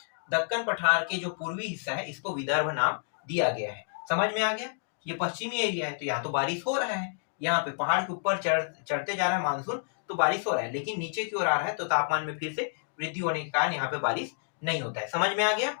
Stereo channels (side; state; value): right; silent; digital silence